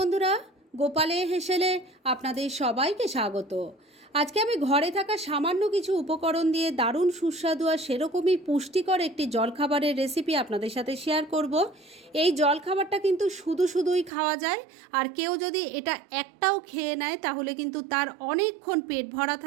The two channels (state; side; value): drops out; left; at 14.1 s